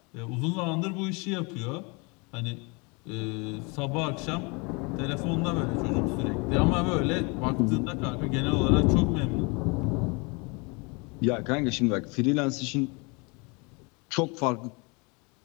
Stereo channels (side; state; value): right; quieter; 30.0 dB